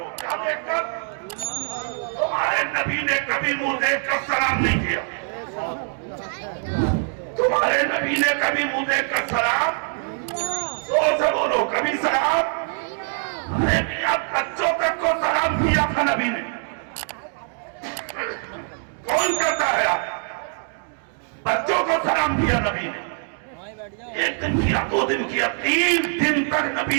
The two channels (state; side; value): silent; left; 55 dB below the other